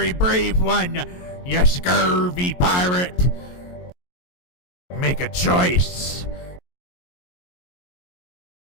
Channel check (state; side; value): late; right; 22 ms